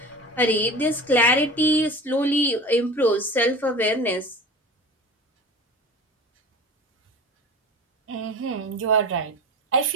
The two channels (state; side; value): normal; both; correlation 0.35